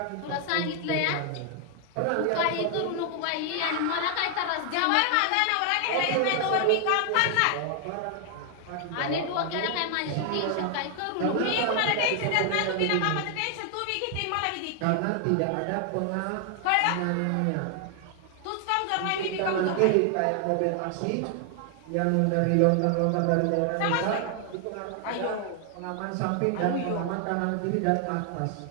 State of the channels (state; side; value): different; both; correlation 0.00